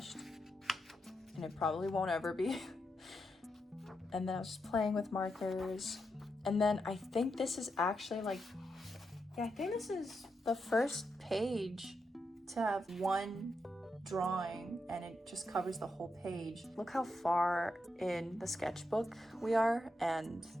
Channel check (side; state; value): both; normal; correlation 0.84